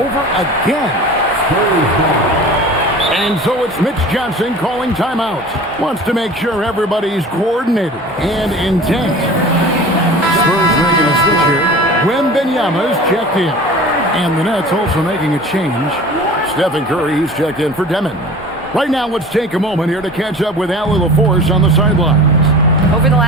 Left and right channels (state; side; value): normal; both; correlation 0.40